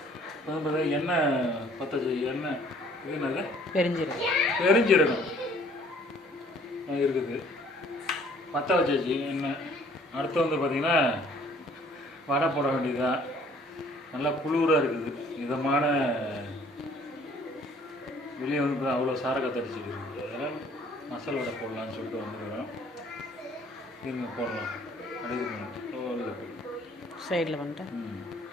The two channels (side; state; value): both; normal; correlation 0.58